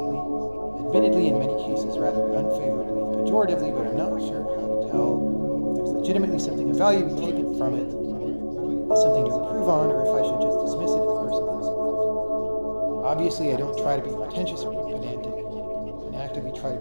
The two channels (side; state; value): both; inverted; correlation -1.00